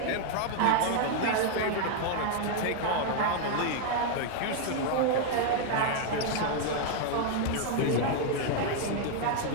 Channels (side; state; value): both; different; correlation 0.00